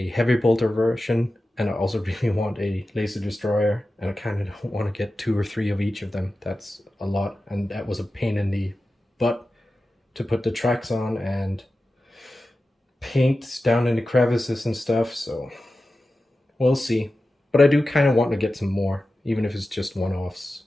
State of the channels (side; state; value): both; normal; correlation 0.94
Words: heavy bolter version, and I also really want a laser destroyer, and I kind of don't want to get 2 or 3 of each of them. That's a lot, and that was a pain in the butt to put the tracks on and paint down in the crevices and stuff, so we'll see. But I do kind of want to get some more, even if it's just one-offs.